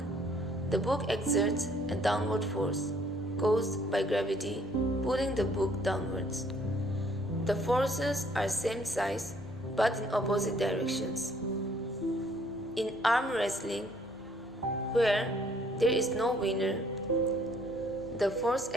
The book exerts a downward force caused by gravity pulling the book downwards. The forces are same size but in opposite directions. In arm wrestling, where there is no winner, the force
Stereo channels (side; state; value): both; normal; correlation 0.62